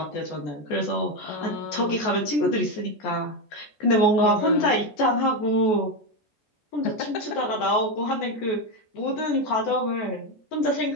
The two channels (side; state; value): right; late; 14 ms